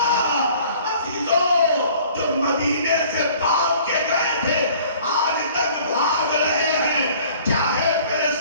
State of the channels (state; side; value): inverted; both; correlation -0.52